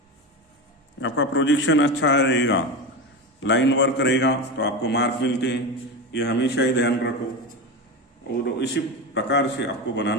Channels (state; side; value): normal; both; correlation 0.20